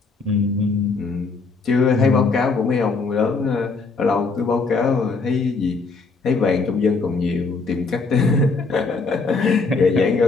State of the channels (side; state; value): right; quieter; 4.2 dB